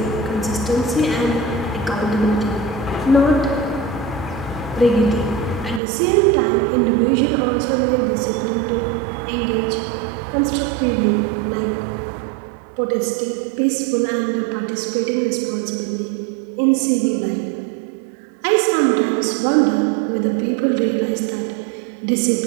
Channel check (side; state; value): left; drops out; at 5.8 s